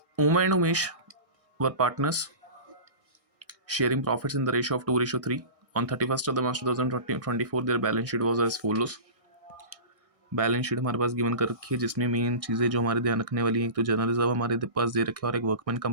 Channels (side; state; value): left; late; 1.6 ms